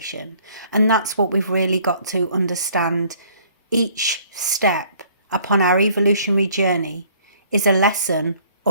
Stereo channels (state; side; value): inverted; both; correlation -0.59